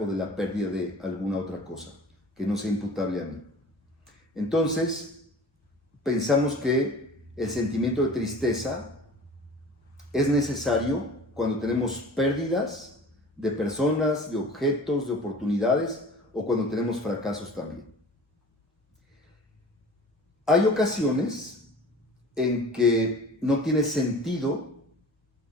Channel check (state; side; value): normal; both; correlation 0.42